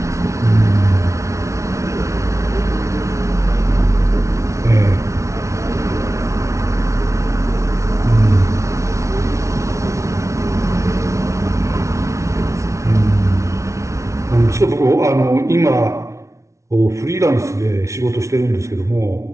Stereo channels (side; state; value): left; late; 0.14 ms